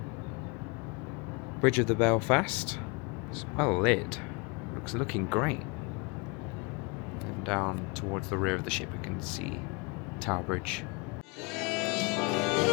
Bridge of the Belfast is well lit, looking great. And down towards the rear of the ship we can see Tower Bridge.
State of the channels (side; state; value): right; quieter; 29.7 dB